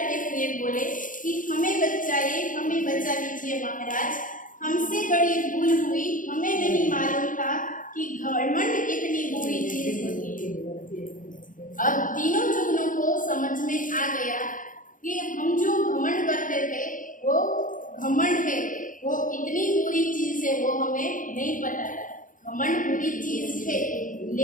हुए बोले कि हमें बचाइए, हमें बचा लीजिए महाराज, हमसे बड़ी भूल हुई, हमें नहीं मालूम था कि घमंड इतनी बुरी चीज होती है। अब तीनों जुगनू को समझ में आ गया कि हम जो घमंड करते थे वो घमंड है, वो इतनी बुरी चीज है वो हमें नहीं पता है। घमंड बुरी चीज है,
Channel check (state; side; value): late; right; 0.39 ms